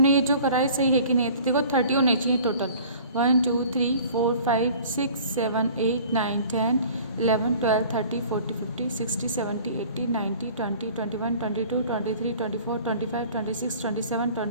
ये जो करा है सही है कि नहीं। तो देखो, 30 होने चाहिए टोटल। 1, 2, 3, 4, 5, 6, 7, 8, 9, 10, 11, 12, 13, 14, 15, 16, 17, 18, 19, 20, 21, 22, 23, 24, 25, 26, 27,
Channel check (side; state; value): both; inverted; correlation -0.48